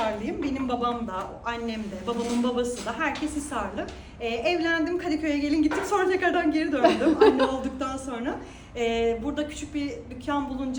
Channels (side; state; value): both; identical; correlation 1.00